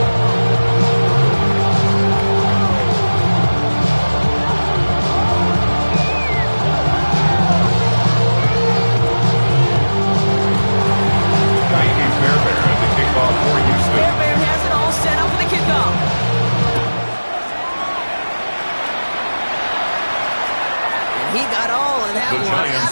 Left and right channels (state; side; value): inverted; both; correlation -1.00